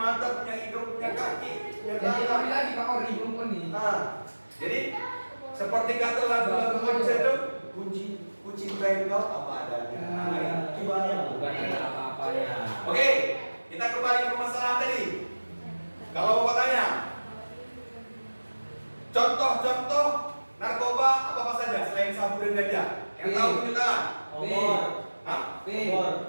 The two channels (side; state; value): both; inverted; correlation -1.00